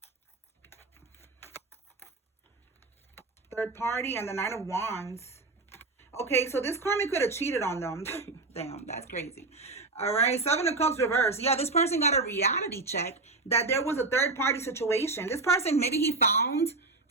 Third party and the Knight of Wands. Okay, so this karmic could have cheated on them. Damn, that's crazy. All right, Seven of Cups reverse. Yeah, this person got a reality check that there was a third party situation. This person, maybe he found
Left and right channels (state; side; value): quieter; left; 3.5 dB